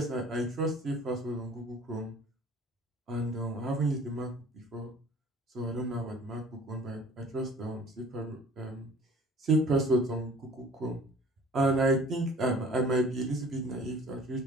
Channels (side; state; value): both; normal; correlation 0.49